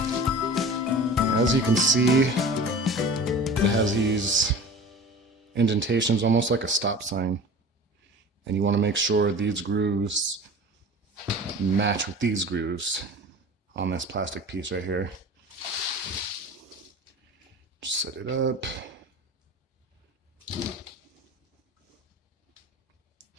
As you can see, it has these indentations almost like a stop sign, and you want to make sure these grooves match with these grooves on this plastic piece right here. Just set it up.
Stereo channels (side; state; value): both; normal; correlation 0.38